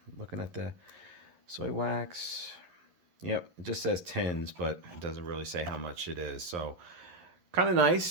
Looking at the soy wax. Yep, it just says tins, but it doesn't really say how much it is. So, kind of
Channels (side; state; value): left; late; 11 ms